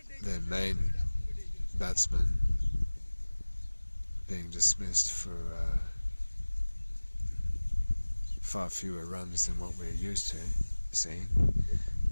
their main batsman being dismissed for far fewer runs than what we're used to seeing.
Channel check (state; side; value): inverted; both; correlation -1.00